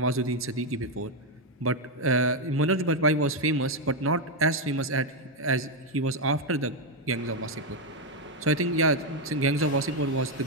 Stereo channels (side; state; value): both; normal; correlation 0.04